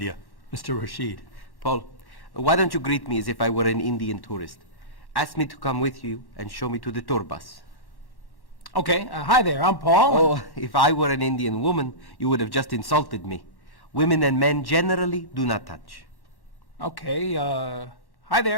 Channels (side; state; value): right; late; 1.1 ms